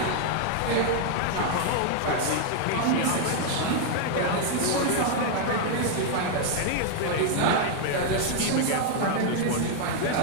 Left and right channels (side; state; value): both; different; correlation 0.00